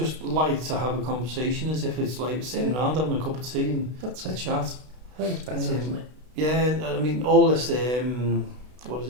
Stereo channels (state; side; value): late; left; 32 ms